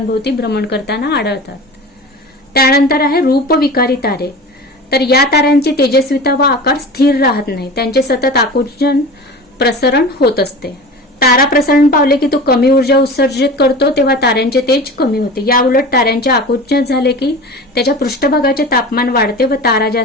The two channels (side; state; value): both; normal; correlation 0.34